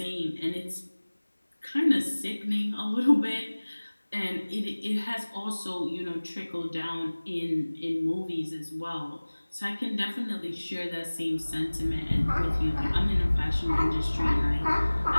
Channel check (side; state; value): both; inverted; correlation -1.00